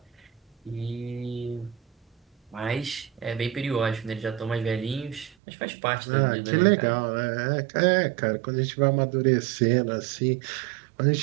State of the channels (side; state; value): left; drops out; at 5.3 s